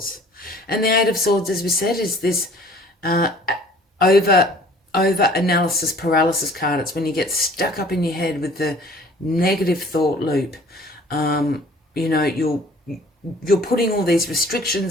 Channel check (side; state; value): both; normal; correlation 0.52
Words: And the Eight of Swords, as we said, is this over analysis paralysis card. It's when you get stuck up in your head with the negative thought loop. You know, you're putting all these